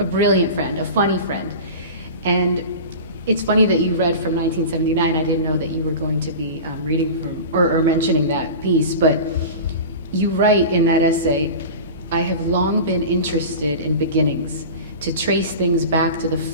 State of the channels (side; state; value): both; inverted; correlation -0.32